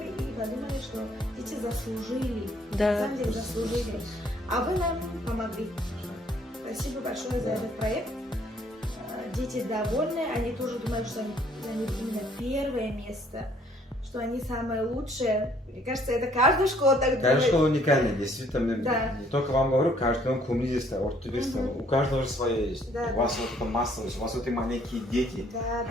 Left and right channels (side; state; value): both; normal; correlation 0.62